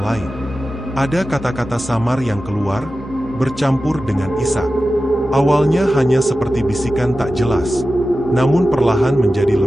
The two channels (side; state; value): both; normal; correlation 0.94